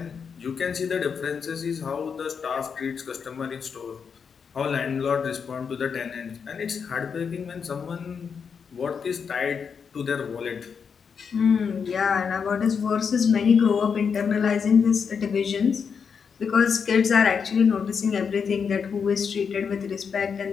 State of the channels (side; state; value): right; quieter; 6.3 dB